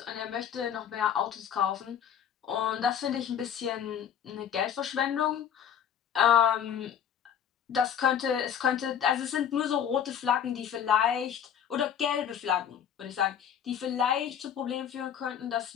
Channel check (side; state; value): right; quieter; 8.9 dB